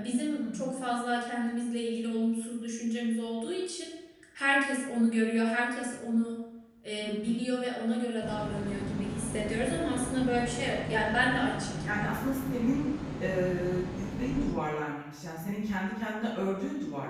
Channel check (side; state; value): both; identical; correlation 1.00